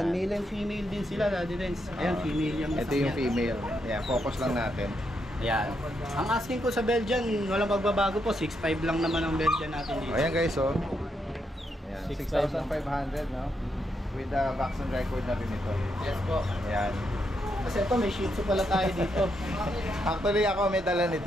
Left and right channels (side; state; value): both; normal; correlation 0.80